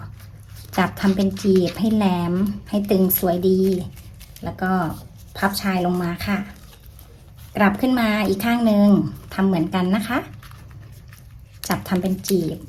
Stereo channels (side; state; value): both; identical; correlation 1.00